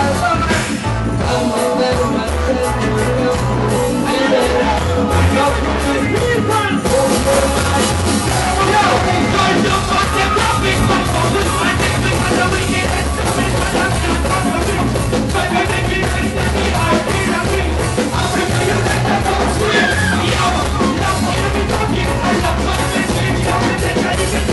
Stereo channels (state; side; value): identical; both; correlation 1.00